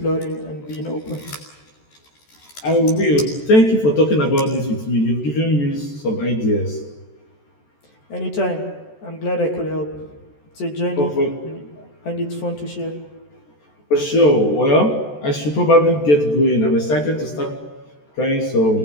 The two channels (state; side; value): late; right; 14 ms